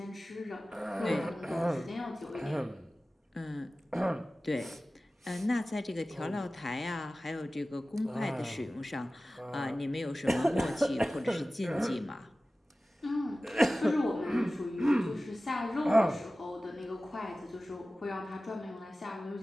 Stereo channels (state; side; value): normal; both; correlation 0.96